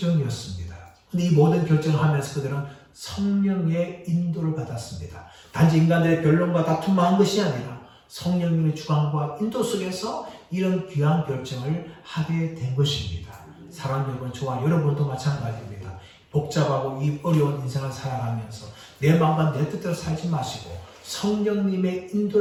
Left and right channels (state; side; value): identical; both; correlation 1.00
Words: 근데 이 모든 결정을 하면서 그들은 성령의 인도를 받았습니다. 단지 인간들의 변론과 다툼만 한 것이 아니라 성령님의 주관과 인도 속에서 이런 귀한 결정을 하게 된 것입니다. 사랑하는 여러분, 저와 여러분도 마찬가지입니다. 복잡하고 이 어려운 인생을 살아가면서 내 마음과 내 뜻대로 살지 마시고 성령님의